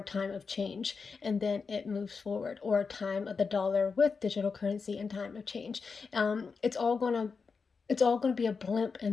time of change, and then it moves forward, or time of the dollar with digital currency and time of change. It's all gonna be a blimp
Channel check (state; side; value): quieter; right; 5.1 dB